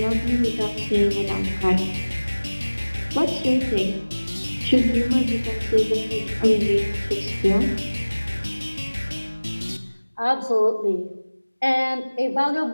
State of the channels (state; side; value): inverted; both; correlation -1.00